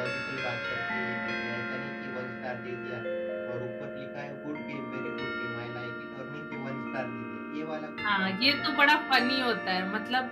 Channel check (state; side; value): identical; both; correlation 1.00